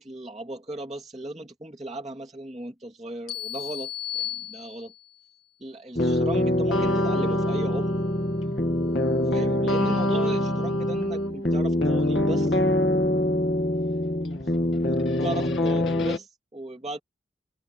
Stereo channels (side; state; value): both; normal; correlation 0.62